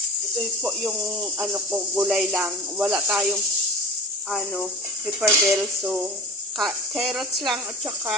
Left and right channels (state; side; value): normal; both; correlation 0.32